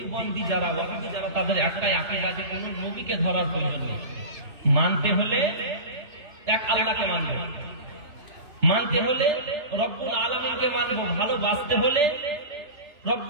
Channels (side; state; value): left; late; 2.9 ms